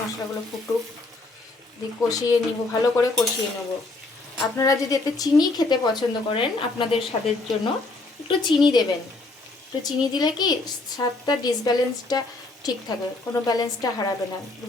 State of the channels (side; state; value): right; quieter; 3.2 dB